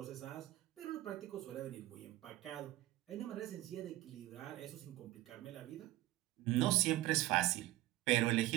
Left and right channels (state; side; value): quieter; left; 16.4 dB